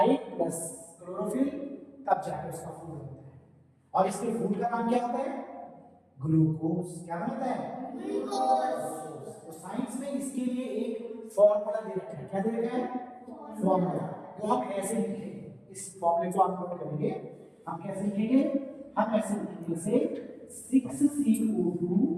plus chlorophyll, तब जाकर उसका फूड बनता है। और इसके फूड का नाम क्या होता है, ग्लूकोज। क्या बनता है, ग्लूकोज। तो साइंस में इसके लिए एक फॉर्मूला दे रखा है। क्या दे रखा है, फॉर्मूला, जो हम ऐसे लिखेंगे। इस फॉर्मूले को आप नोट करेंगे। हम कैसे लिखेंगे, हम ऐसे लिखेंगे, जैसे 6CO2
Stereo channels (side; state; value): both; identical; correlation 1.00